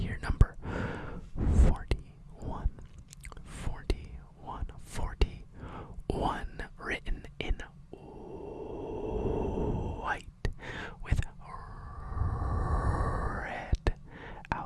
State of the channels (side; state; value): both; identical; correlation 1.00